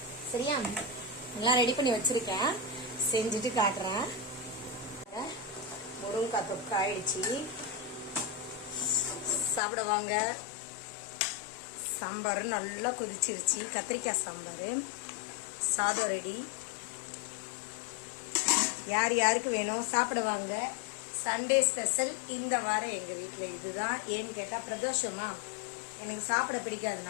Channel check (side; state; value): right; drops out; at 9.6 s